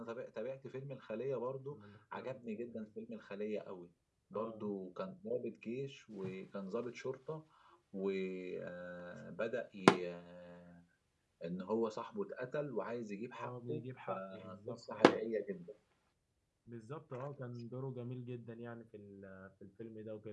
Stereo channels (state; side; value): identical; both; correlation 1.00